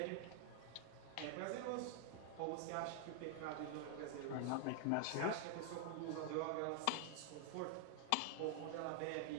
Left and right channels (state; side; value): different; both; correlation 0.00